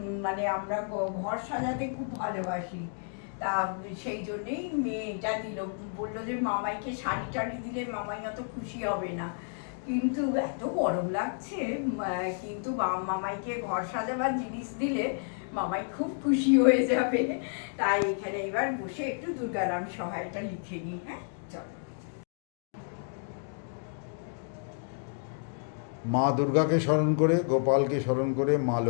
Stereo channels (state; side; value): silent; right; digital silence